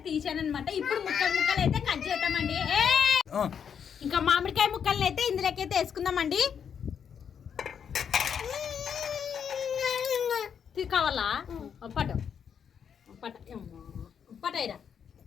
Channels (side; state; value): right; quieter; 7.6 dB